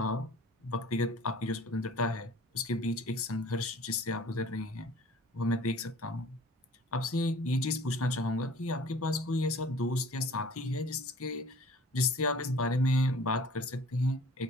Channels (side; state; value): both; normal; correlation 0.47